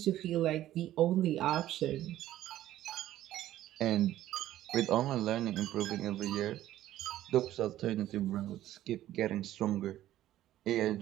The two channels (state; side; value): quieter; left; 13.5 dB